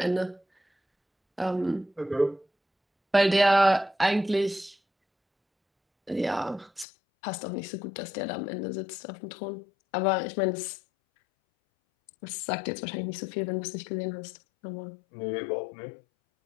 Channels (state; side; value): drops out; right; at 6.9 s